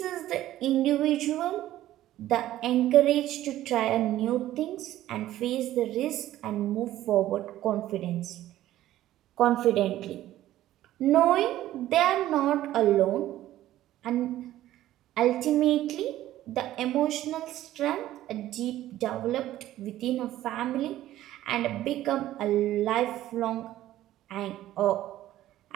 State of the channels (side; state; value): left; quieter; 14.0 dB